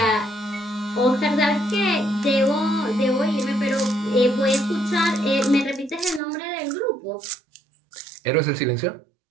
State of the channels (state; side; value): drops out; left; at 6.2 s